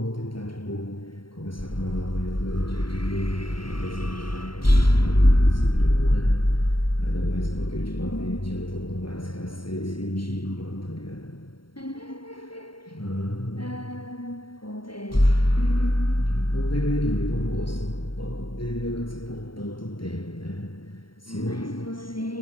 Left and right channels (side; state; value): right; late; 0.73 ms